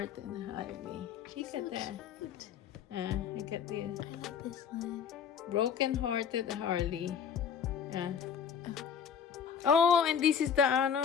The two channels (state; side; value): quieter; right; 7.5 dB